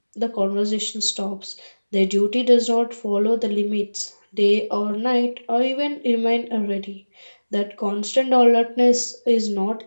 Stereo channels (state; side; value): inverted; both; correlation -1.00